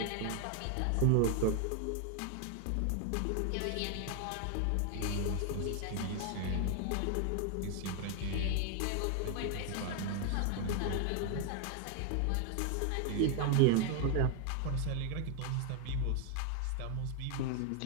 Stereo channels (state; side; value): different; both; correlation 0.00